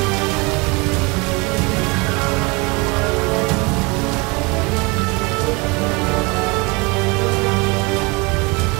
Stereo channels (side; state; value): left; quieter; 27.3 dB